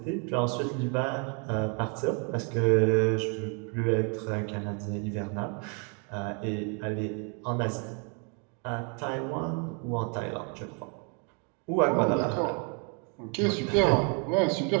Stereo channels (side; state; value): left; quieter; 37.1 dB